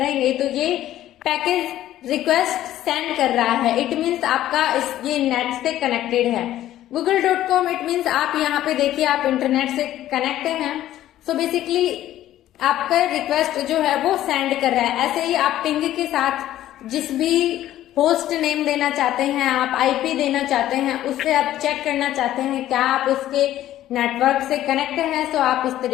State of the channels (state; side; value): quieter; right; 13.3 dB